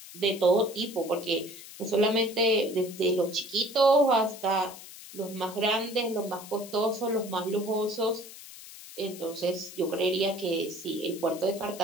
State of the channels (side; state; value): left; noise; hiss, 16 dB below the sound